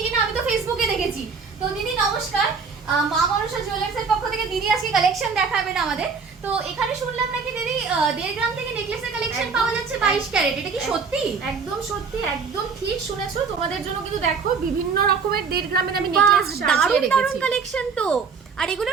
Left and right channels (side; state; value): left; quieter; 5.3 dB